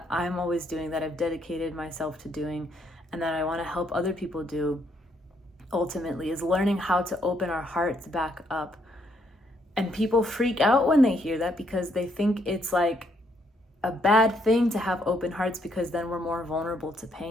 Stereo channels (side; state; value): both; normal; correlation 0.72